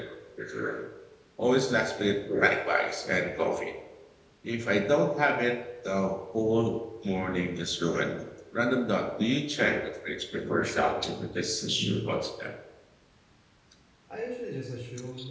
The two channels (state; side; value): identical; both; correlation 1.00